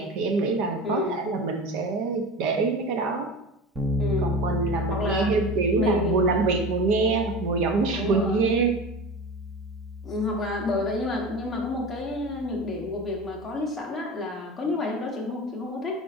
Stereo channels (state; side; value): normal; both; correlation 0.31